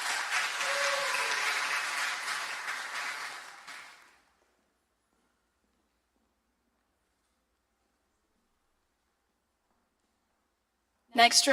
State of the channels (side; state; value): both; identical; correlation 1.00